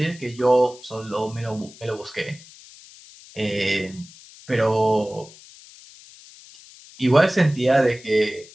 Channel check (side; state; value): left; noise; hiss, 21 dB below the sound